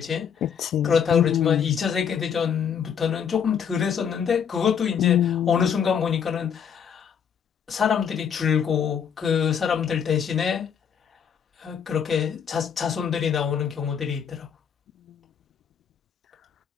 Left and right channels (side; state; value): right; quieter; 7.6 dB